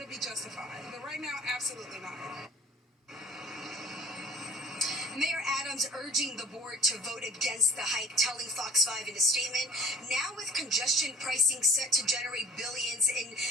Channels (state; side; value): normal; both; correlation 0.47